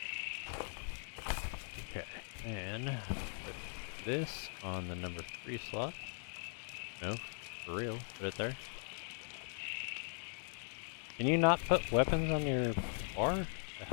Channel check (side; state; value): right; silent; 51 dB below the other